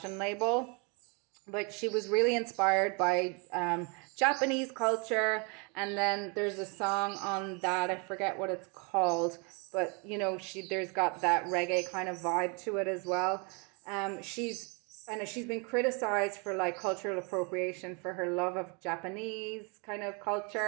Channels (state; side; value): quieter; left; 33.2 dB